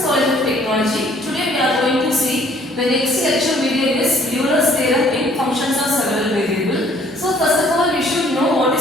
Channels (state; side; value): normal; both; correlation 0.59